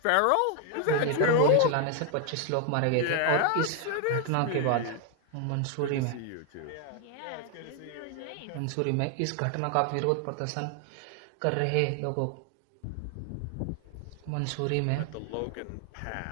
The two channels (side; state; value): both; different; correlation 0.00